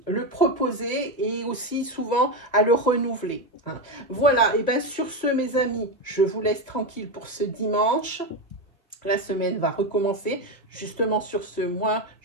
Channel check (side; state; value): both; normal; correlation 0.12